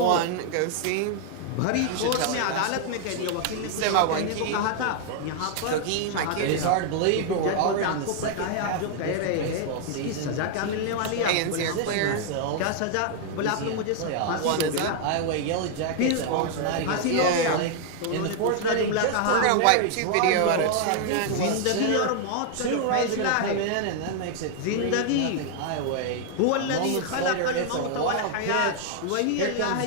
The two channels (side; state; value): both; different; correlation 0.00